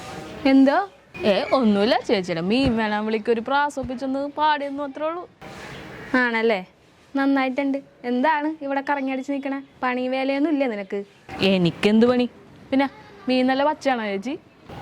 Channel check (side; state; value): both; identical; correlation 1.00